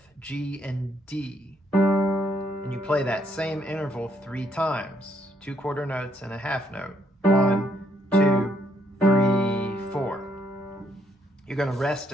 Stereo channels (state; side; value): normal; both; correlation 0.71